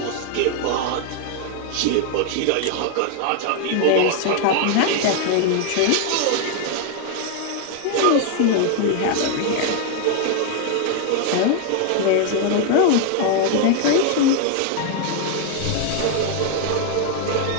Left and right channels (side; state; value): both; different; correlation 0.00